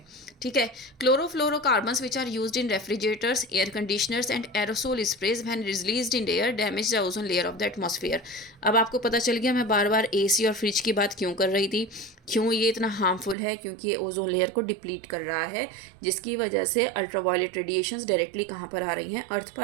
ठीक है। Chlorofluorocarbons which are used in refrigerators, air conditioners and aerosol sprays when released in air damage the ozone layer of the atmosphere. अब आपको पता चल गया मैं बार बार एसी और फ्रिज की बात क्यों कर रही थी, क्यों ये इतना हार्मफुल है, क्योंकि ये ओजोन लेयर को डिप्लीट कर रहा है, जिसकी वजह से अल्ट्रावायलेट रेडिएशंस डायरेक्टली कहाँ पर आ रही हैं, अर्थ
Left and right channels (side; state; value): left; drops out; at 13.4 s